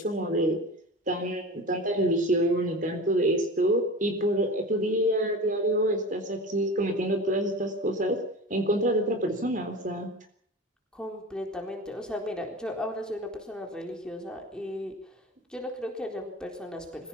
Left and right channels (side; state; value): both; normal; correlation 0.32